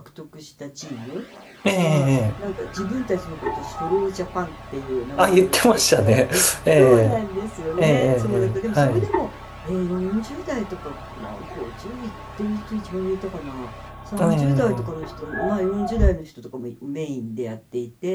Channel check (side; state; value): both; identical; correlation 1.00